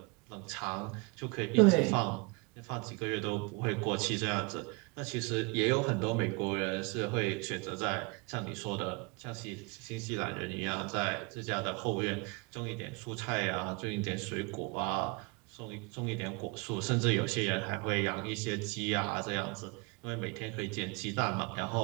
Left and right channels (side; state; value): left; quieter; 28.9 dB